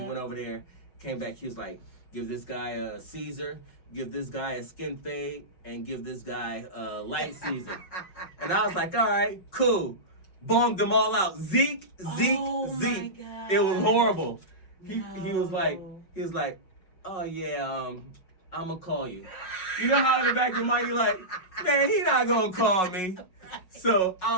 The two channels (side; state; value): right; late; 5.4 ms